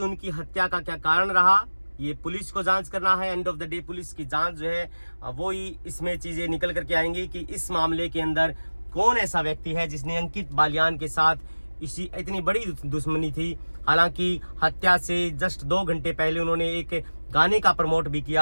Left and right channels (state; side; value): inverted; both; correlation -1.00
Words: उनकी हत्या का क्या कारण रहा, ये पुलिस को जांच करना है। End of the day police की जांच जो है वो ही इसमें चीजें निकल करके आएंगी कि इस मामले के अंदर कौन ऐसा व्यक्ति है जिसने अंकित बालियान के साथ इतनी बड़ी दुश्मनी थी। हालांकि हत्या से जस्ट 2 घंटे पहले उन्होंने एक गाने का प्रमोट भी